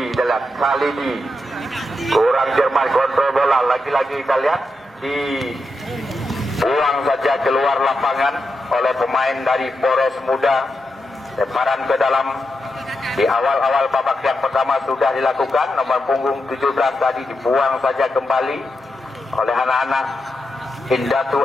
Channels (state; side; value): normal; both; correlation 0.86